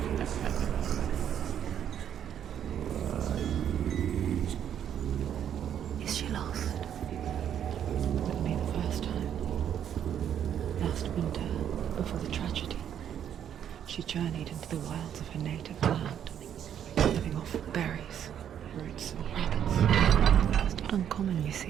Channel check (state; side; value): quieter; left; 9.4 dB